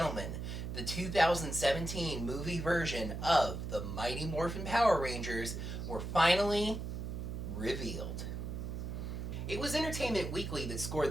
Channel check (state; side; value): noise; right; hum, 5 dB below the sound